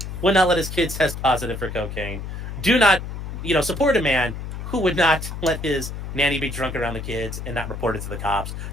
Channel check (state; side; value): noise; left; hum, 7 dB below the sound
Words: his kids test positive for cocaine. Do not, support a man who would not let his nanny be drunk around the kids and not report it to the cops.